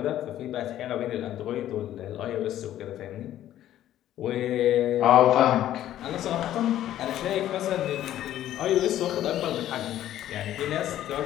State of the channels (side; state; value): right; quieter; 12.5 dB